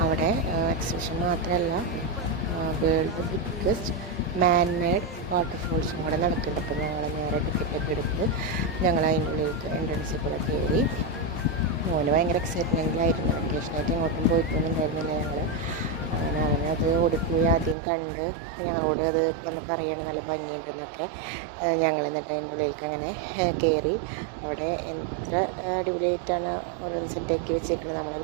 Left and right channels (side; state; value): left; drops out; at 17.8 s